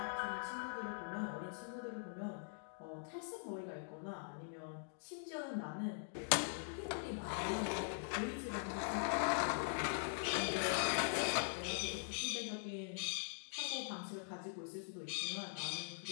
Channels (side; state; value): right; silent; digital silence